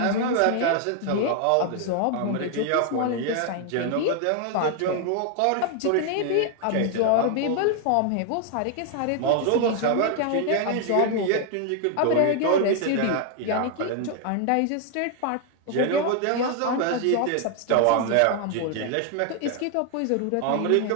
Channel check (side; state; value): both; different; correlation 0.00